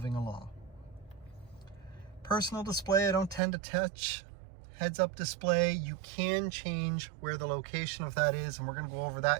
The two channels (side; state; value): left; drops out; at 3.4 s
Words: along. Personal display, I don't tend to touch. Heads up display, you can change where the location of that is, and we're going to go over